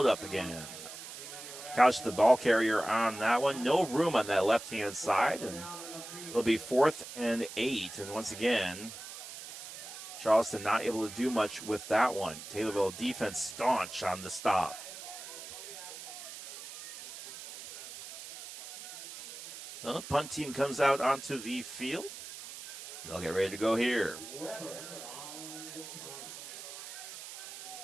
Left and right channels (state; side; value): noise; right; hiss, 12 dB below the sound